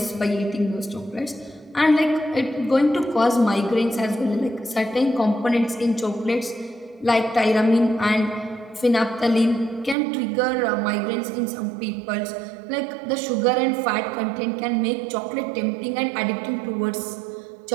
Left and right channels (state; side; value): drops out; left; at 10.0 s